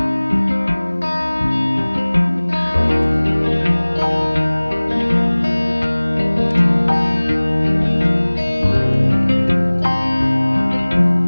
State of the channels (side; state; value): both; inverted; correlation -1.00